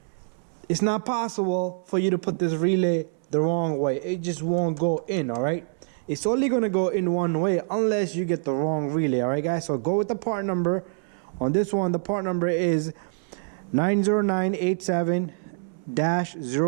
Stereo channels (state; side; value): silent; left; 61 dB below the other